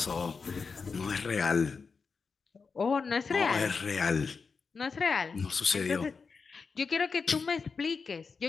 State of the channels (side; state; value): right; quieter; 5.0 dB